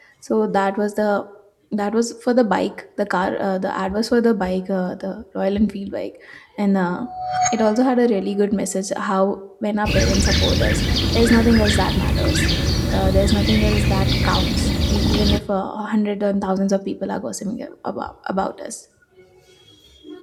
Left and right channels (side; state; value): both; identical; correlation 1.00